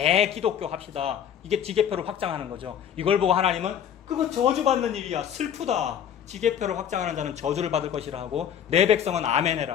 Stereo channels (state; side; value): quieter; right; 9.1 dB